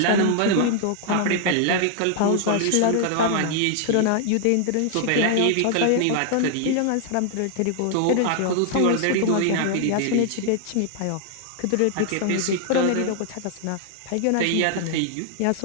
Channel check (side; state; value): both; different; correlation -0.01